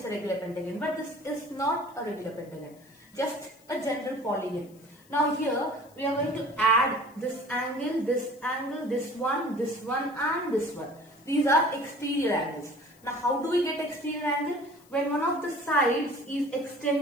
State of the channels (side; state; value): left; noise; hiss, 28 dB below the sound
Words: a regular pentagon. But this is not a regular pentagon, just a general polygon. Now here we are going to add this angle, this one, and this one. These are exterior angles. Now how do we get exterior angle? When one of the sides is